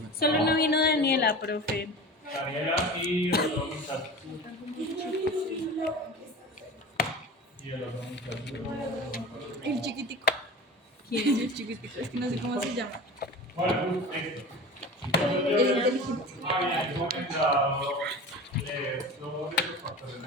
Solo no vino Daniela, profe. Daniela y el otro muchacho. Y el otro muchacho. El chiquitico. ¿Quién es el chiquitico? Es que no sé cómo se llama. Bueno, esto. Entonces, había comentado todos esos factores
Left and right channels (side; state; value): both; normal; correlation 0.34